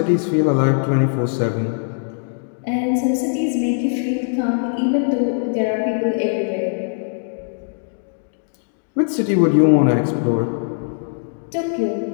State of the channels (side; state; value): right; silent; digital silence